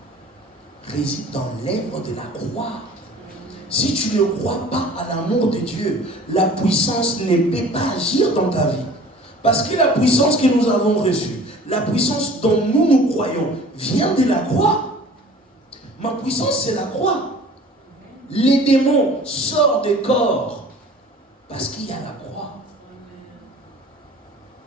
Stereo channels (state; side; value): normal; both; correlation 0.47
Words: réside dans l'œuvre de la croix. Si tu ne crois pas à l'amour de Dieu, la puissance ne peut pas agir dans ta vie. Parce que la puissance que nous avons reçue, la puissance dont nous croyons, vient de la croix. Ma puissance, c'est la croix. Les démons sortent des corps parce qu'il y a la croix.